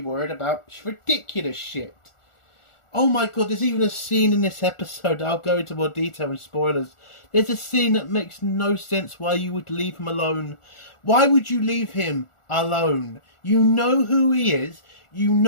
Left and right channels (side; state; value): right; late; 1.4 ms